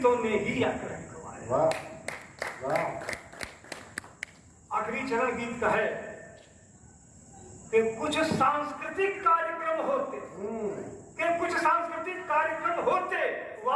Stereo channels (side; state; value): both; identical; correlation 1.00